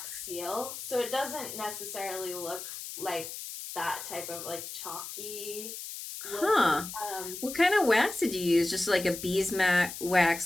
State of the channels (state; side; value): noise; left; hiss, 9 dB below the sound